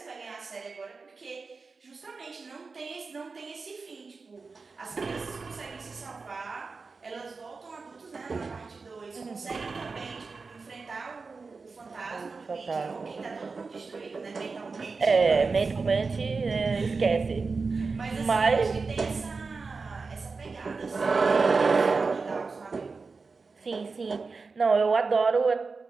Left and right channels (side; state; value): left; quieter; 4.4 dB